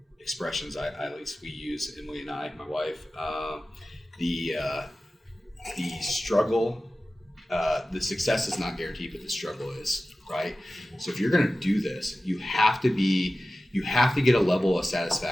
expressions. At least we use, Emily and I, my wife. The struggle, the success is not guaranteed, but the struggle is, right? So if you're going to do this, you have to get a level of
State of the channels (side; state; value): both; normal; correlation 0.95